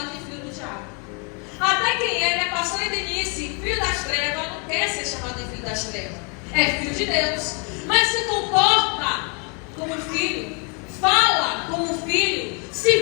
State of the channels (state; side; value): quieter; right; 35.6 dB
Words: de filho do diabo. Até quem é, né, pastor Denise, filho das trevas, não quer ser chamado de filho das trevas. É filho de Deus. Mas se comporta como filho, fala como filho,